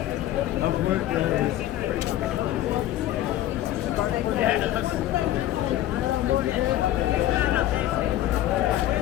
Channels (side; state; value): right; quieter; 13.6 dB